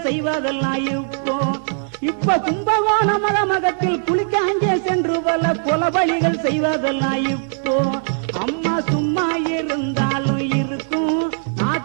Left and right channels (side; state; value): left; silent; 66 dB below the other